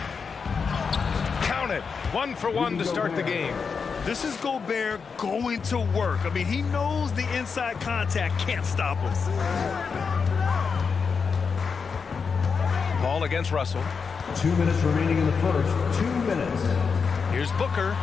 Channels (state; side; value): quieter; right; 5.6 dB